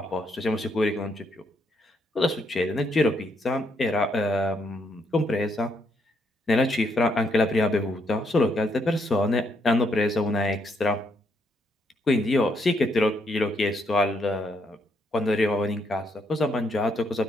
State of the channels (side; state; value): both; normal; correlation 0.75